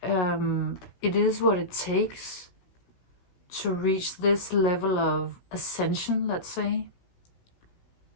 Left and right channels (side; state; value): right; late; 16 ms